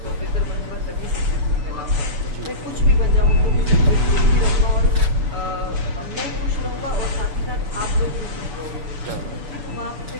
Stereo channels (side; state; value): left; late; 6.9 ms